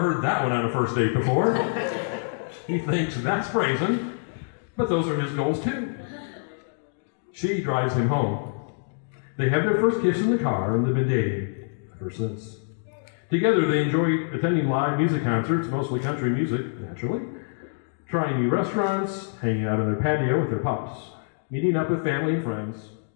that one on a first date before. He thinks that's brazen, but those are his goals too. She drives him home. They have their first kiss in the car, and they've been dating ever since. Together, they enjoy attending live music concerts, mostly country music, naturally, trying new restaurants, hanging out on their patio with their pups, meeting up with family and friends,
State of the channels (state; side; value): silent; right; digital silence